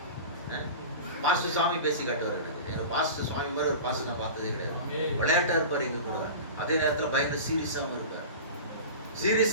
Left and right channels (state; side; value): inverted; both; correlation -0.32